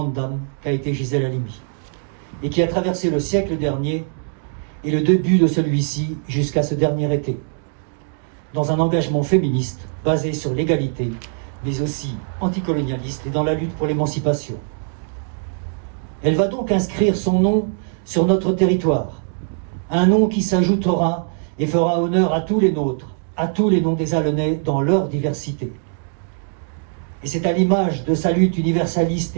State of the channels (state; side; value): silent; left; digital silence